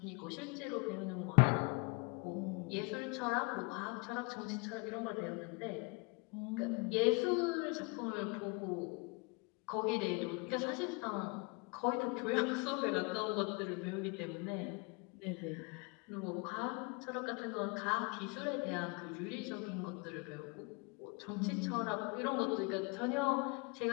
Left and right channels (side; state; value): right; quieter; 30.6 dB